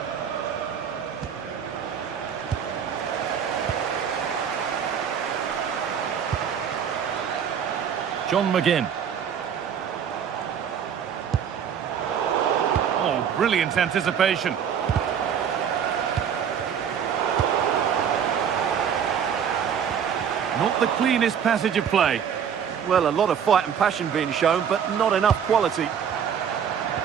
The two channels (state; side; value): quieter; left; 8.0 dB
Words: John McGinn. Oh, brilliant anticipation. Not the cleanest passage of play. Well, a lot of fight and passion being shown, but not enough quality.